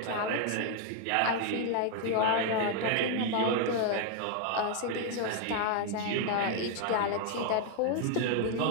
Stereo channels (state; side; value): different; both; correlation 0.00